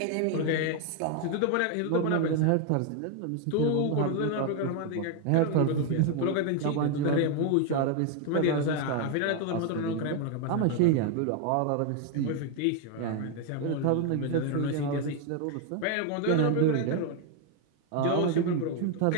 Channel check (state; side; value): different; both; correlation 0.01